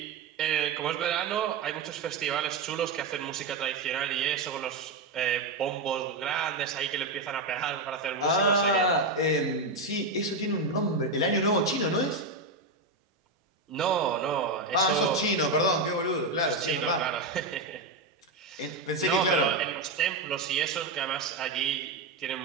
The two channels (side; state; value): left; quieter; 3.1 dB